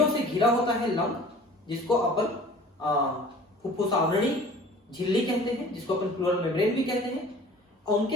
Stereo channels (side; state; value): both; normal; correlation 0.46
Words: से घिरा होता है लंग, जिसको अपन फुफ्फुस आवरणी झिल्ली कहते हैं, जिसको अपन प्लूरल मेम्ब्रेन भी कहते हैं, और